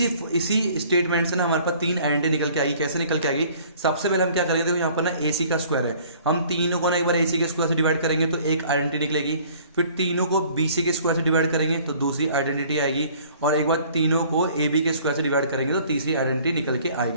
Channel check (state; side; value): inverted; both; correlation -0.54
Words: स्टेटमेंट से ना हमारे पास 3 आइडेंटिटी निकल के आएगी। कैसे निकल के आएगी, सबसे पहले हम क्या करेंगे, देखो यहाँ पर ना AC का स्क्वायर है, हम तीनों को ना एक बार AC के स्क्वायर से डिवाइड करेंगे तो एक आइडेंटिटी निकलेगी। फिर तीनों को BC के स्क्वायर से डिवाइड करेंगे तो दूसरी आइडेंटिटी आएगी। और एक बार तीनों को AB के स्क्वायर से डिवाइड करेंगे तो तीसरी आइडेंटिटी निकल के